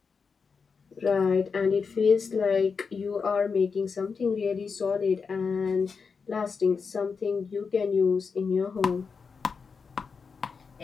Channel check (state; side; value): quieter; right; 5.4 dB